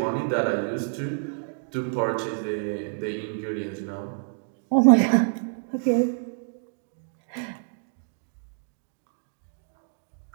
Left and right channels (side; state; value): left; silent; digital silence